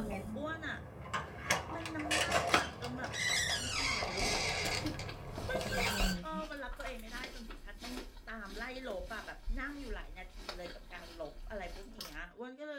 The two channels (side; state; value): both; identical; correlation 1.00